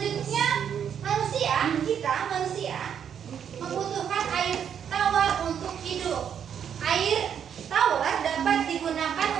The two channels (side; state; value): left; quieter; 8.4 dB